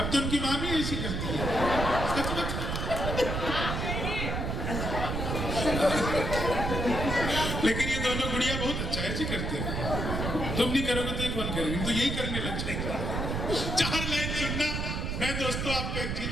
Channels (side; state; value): right; noise; rumble, 2 dB below the sound